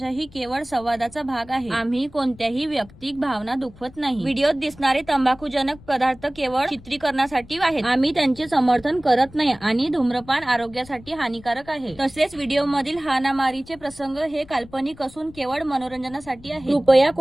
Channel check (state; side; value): noise; left; rumble, 22 dB below the sound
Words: ही केवळ संवादाचा भाग आहे. आम्ही कोणत्याही वैयक्तिक भावना दुखवत नाही. व्हिडिओत दिसणारे तंबाखूजनक पदार्थ केवळ चित्रीकरणासाठी आहेत. आम्ही त्यांचे समर्थन करत नाही आणि धूम्रपान आरोग्यासाठी हानिकारक आहे. तसेच व्हिडिओमधील हाणामारीचे प्रसंग हे काल्पनिक असून केवळ मनोरंजनासाठी आहे. कृपया